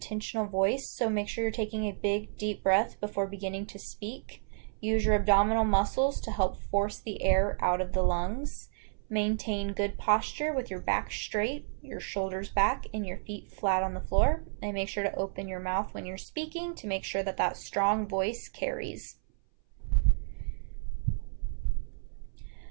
voice. So make sure you're taking a big, deep breath before beginning to speak. Use your abdominal muscles to help force the air out of the lungs. Maintain good posture with your back straight, your shoulders back, and your feet flat on the floor. And make sure to open your mouth when you're speaking to make sure that strong voice carries.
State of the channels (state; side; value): silent; left; 57 dB below the other